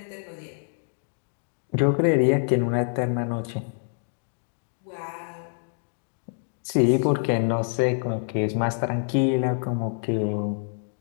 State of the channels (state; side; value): silent; right; 61 dB below the other